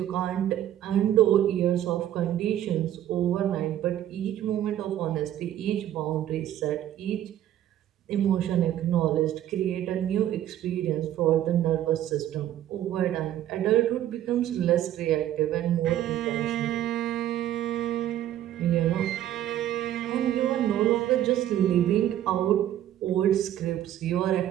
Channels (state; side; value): quieter; left; 12.0 dB